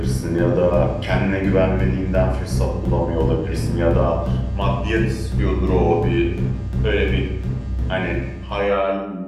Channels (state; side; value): identical; both; correlation 1.00